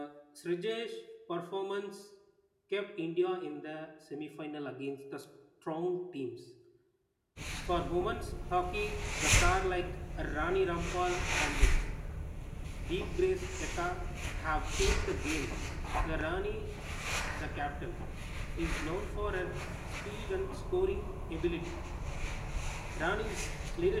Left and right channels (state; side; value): identical; both; correlation 1.00